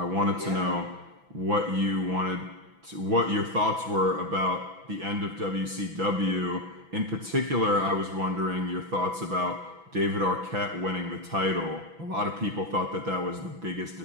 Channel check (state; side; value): late; left; 6.0 ms